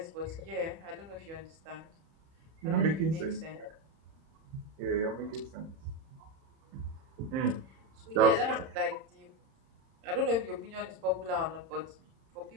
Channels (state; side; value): late; left; 31 ms